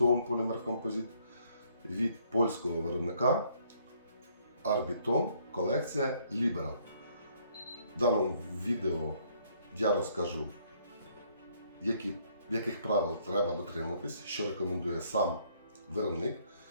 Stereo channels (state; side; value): inverted; both; correlation -0.66